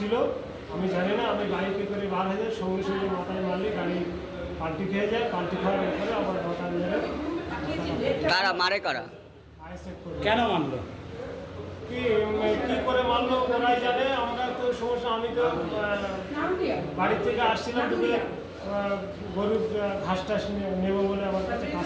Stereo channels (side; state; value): both; identical; correlation 1.00